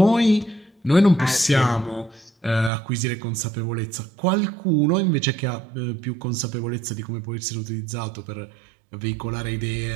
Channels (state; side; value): drops out; left; at 2.7 s